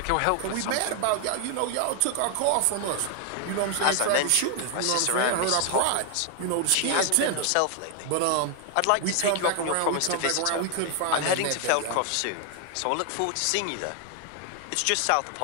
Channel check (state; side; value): different; both; correlation 0.00